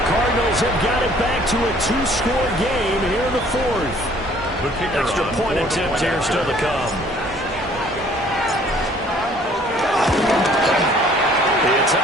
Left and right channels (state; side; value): normal; both; correlation 0.57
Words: Cardinals have got it back to a 2-score game here in the 4th. Extra point attempt here still to come. It's